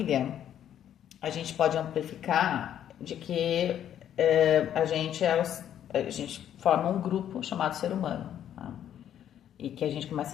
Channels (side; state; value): right; quieter; 10.3 dB